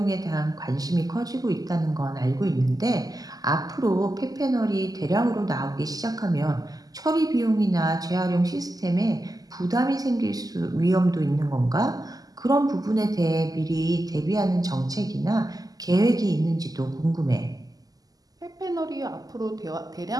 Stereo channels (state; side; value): late; left; 0.18 ms